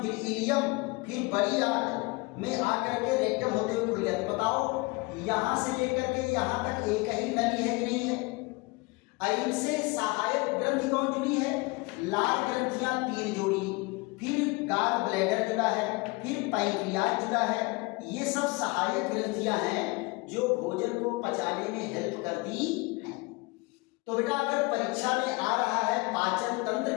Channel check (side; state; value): right; quieter; 25.8 dB